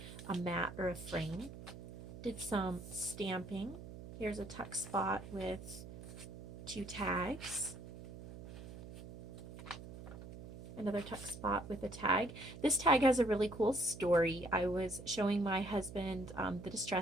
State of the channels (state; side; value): noise; right; hum, 12 dB below the sound